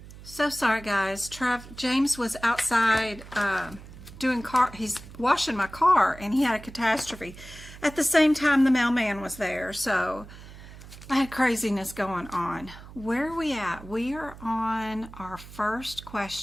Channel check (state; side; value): noise; right; hum, 17 dB below the sound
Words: So sorry, guys. James was outside he's washing my car, and he had a catastrophe. At the same time, the mailman was there, so I had craziness going on. Where are we at? We are on our first